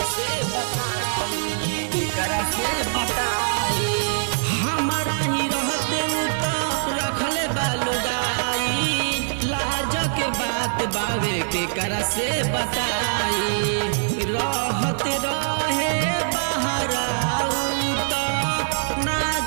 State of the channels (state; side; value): silent; left; 63 dB below the other